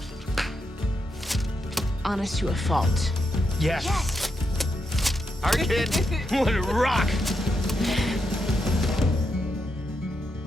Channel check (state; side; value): normal; both; correlation 0.83